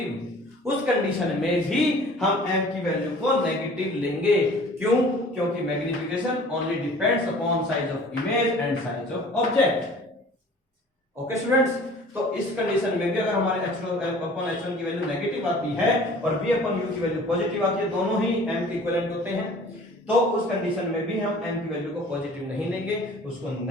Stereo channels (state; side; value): normal; both; correlation 0.48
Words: उस कंडीशन में भी हम m की वैल्यू को नेगेटिव लेंगे। क्यों? क्योंकि magnification only depends upon size of image and size of object. Okay students, तो इस कंडीशन में भी अगर हमारे h2 अपॉन h1 की वैल्यू नेगेटिव आती है और v अपॉन u की वैल्यू पॉजिटिव आती है, दोनों ही m के इक्विवेलेंट होते हैं, तो उस कंडीशन में भी हम m की वैल्यू को पॉजिटिव नहीं लेंगे, उसको